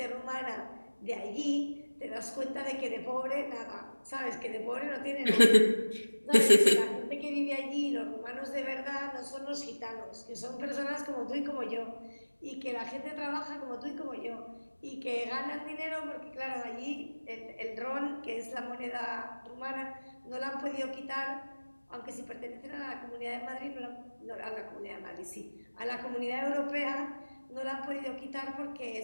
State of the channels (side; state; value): both; inverted; correlation -1.00